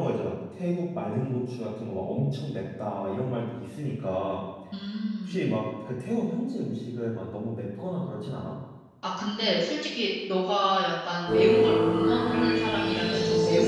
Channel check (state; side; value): identical; both; correlation 1.00